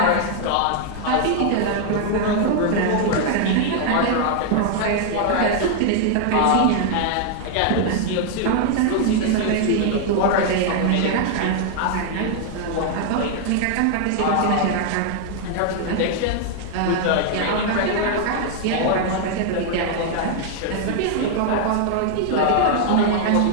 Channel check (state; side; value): different; both; correlation 0.00